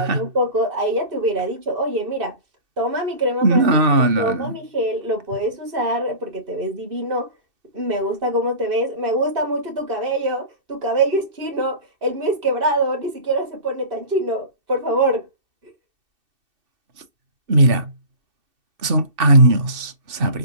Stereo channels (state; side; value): late; left; 2.6 ms